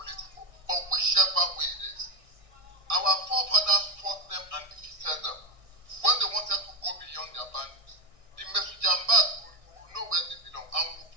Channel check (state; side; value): late; left; 1.6 ms